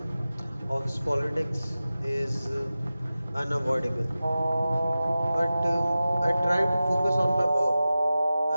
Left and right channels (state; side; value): inverted; both; correlation -0.95